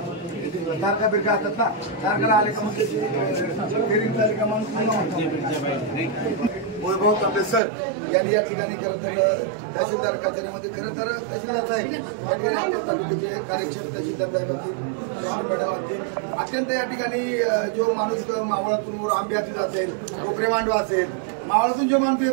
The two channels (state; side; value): drops out; left; at 7.6 s